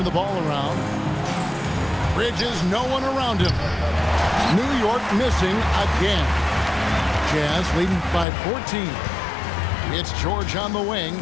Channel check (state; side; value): drops out; right; at 8.2 s